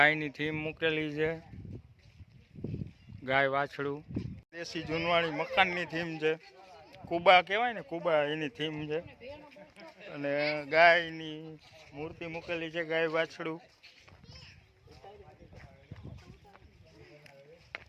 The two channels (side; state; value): both; identical; correlation 1.00